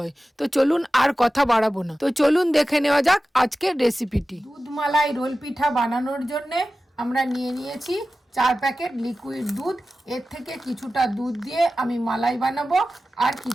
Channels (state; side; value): normal; both; correlation 0.95